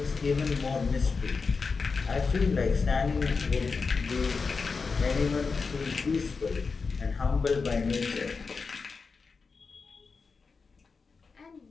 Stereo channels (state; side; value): quieter; right; 4.7 dB